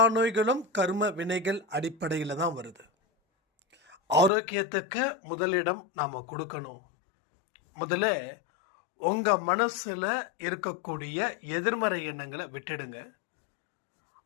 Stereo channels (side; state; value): right; drops out; at 4.3 s